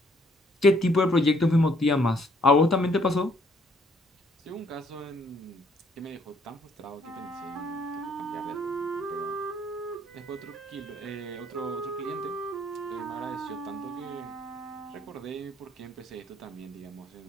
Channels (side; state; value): both; normal; correlation 0.66